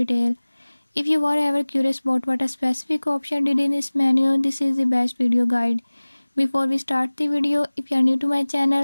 If you were ever curious about what a specific option did in this menu, this is the best video guide. Before we start the video, if you are new to my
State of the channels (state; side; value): inverted; both; correlation -1.00